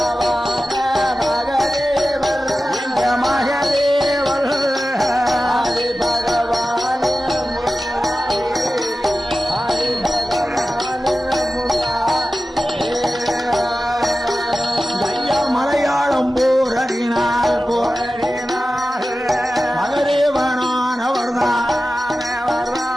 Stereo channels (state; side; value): normal; both; correlation 0.94